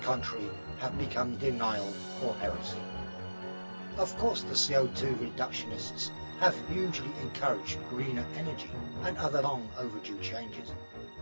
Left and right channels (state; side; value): inverted; both; correlation -1.00